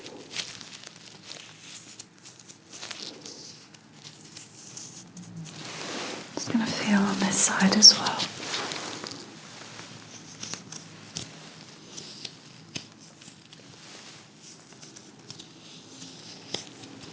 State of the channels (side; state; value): both; identical; correlation 1.00